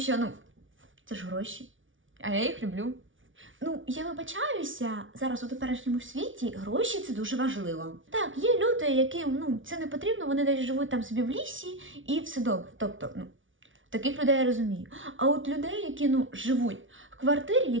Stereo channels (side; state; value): left; late; 0.57 ms